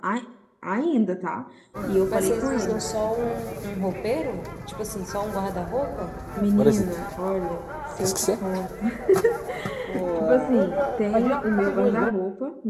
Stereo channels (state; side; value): identical; both; correlation 1.00